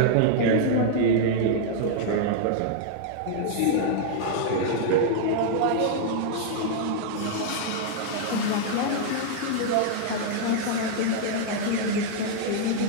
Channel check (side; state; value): both; different; correlation -0.01